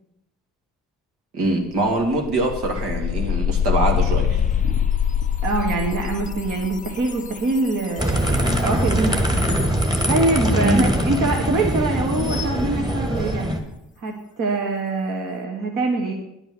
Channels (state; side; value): normal; both; correlation 0.48